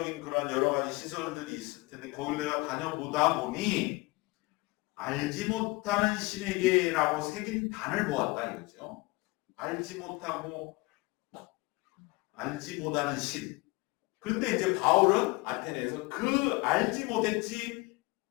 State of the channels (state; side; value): quieter; right; 25.1 dB